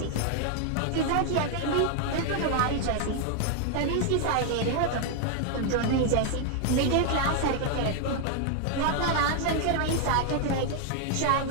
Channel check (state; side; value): different; both; correlation 0.00